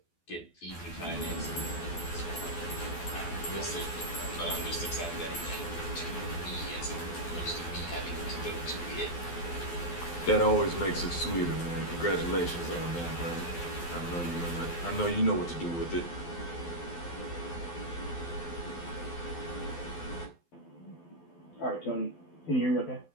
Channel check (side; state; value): right; late; 12 ms